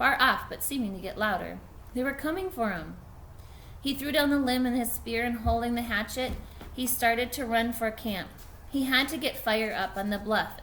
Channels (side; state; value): both; identical; correlation 1.00